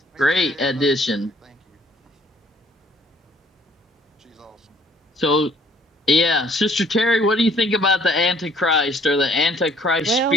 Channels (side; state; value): both; normal; correlation 0.60